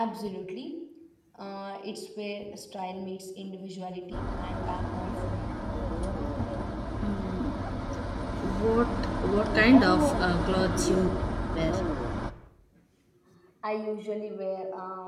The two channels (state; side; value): identical; both; correlation 1.00